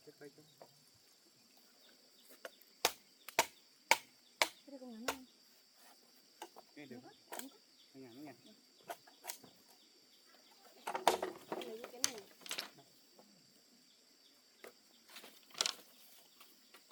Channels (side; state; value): both; identical; correlation 1.00